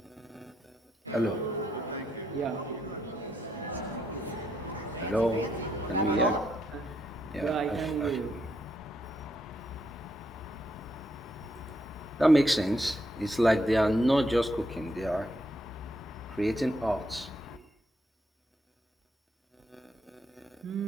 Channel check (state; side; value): normal; both; correlation 0.77